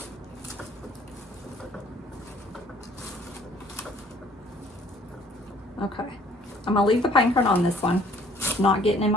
Okay, I'm gonna leave the pine cone on this one. It's not getting in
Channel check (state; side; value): normal; both; correlation 0.58